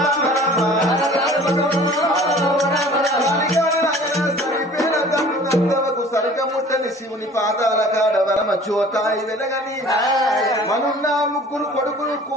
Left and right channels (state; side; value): normal; both; correlation 0.47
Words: సరికముట్టని శివుని పాదాల కాడ వరమ చోతాయి వెలగని మనున్న ముగ్గురు కొడుకులు